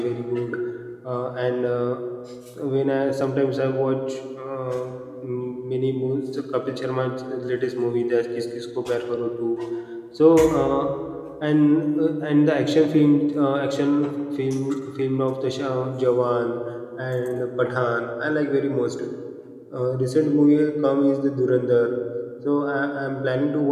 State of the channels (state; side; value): identical; both; correlation 1.00